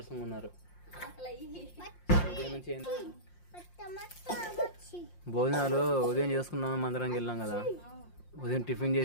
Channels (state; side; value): late; right; 5.7 ms